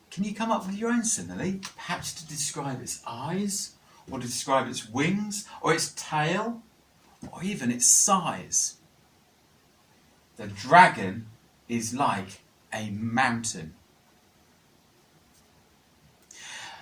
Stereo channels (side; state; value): both; identical; correlation 1.00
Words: Can you come up with your own simile, perhaps to describe its eyes, or to describe its wings, or its tail, or even its size? The dragon is like a mountain.